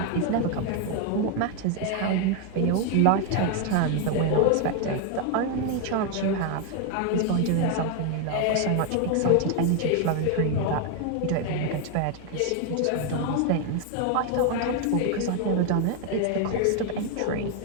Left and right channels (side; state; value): both; different; correlation 0.01